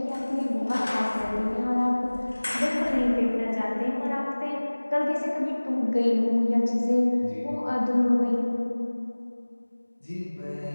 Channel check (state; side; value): inverted; both; correlation -1.00